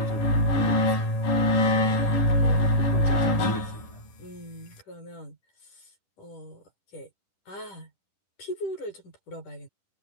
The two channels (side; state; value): right; late; 10 ms